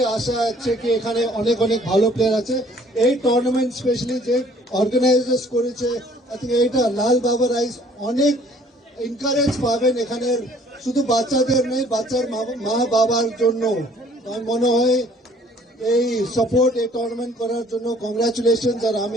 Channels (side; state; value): both; normal; correlation 0.57